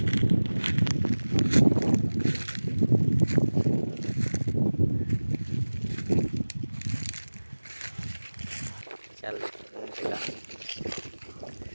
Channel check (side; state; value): both; inverted; correlation -1.00